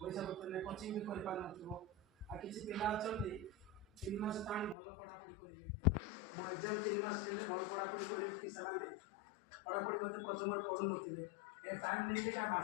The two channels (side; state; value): right; drops out; at 4.8 s